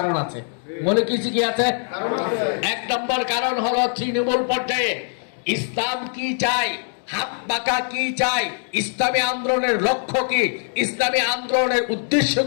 আছে। মৌলিক কিছু কি আছে? 1 নম্বর কারণ হলো তৃণমূল পর্যায়ে ইসলাম কি চাই, হাত পাকা কি চাই, ইসলামী আন্দোলনের লক্ষ্য কি, ইসলামী আন্দোলনের উদ্দেশ্য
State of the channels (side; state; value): right; silent; 57 dB below the other